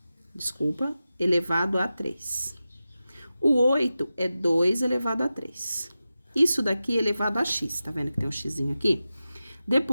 Desculpa, elevado a 3. O 8 é 2 elevado a 3. Isso daqui é elevado a x, tá vendo que tem um xzinho aqui?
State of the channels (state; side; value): inverted; both; correlation -0.93